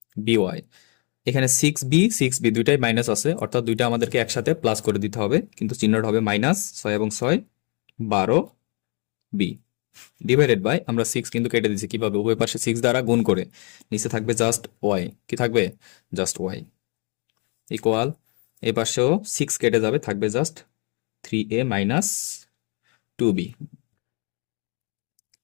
এখানে 6b দুইটাই মাইনাস আছে, অর্থাৎ দুইটা আমাদেরকে একসাথে প্লাস করে দিতে হবে, কিন্তু চিহ্নটা হবে মাইনাস। 6 এবং 6 12b ডিভাইডেড বাই, আমরা 6 কিন্তু কেটে দিচ্ছি কিভাবে? উভয় পাশে 6 দ্বারা গুণ করে। নিচে থাকবে জাস্ট y, কি থাকবে? জাস্ট y ইকুয়াল, এই পাশেও 6 কেটে যাবে, থাকবে জাস্ট 3a মাইনাস 2b।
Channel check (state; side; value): quieter; right; 34.9 dB